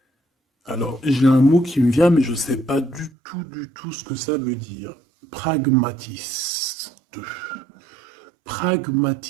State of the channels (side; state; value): left; drops out; at 3.1 s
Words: Alors, j'ai un mot qui me vient, mais je ne sais pas du tout ce que ça veut dire. Pragmatiste.